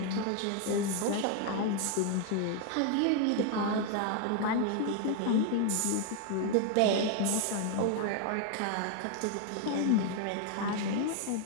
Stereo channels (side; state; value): both; different; correlation 0.01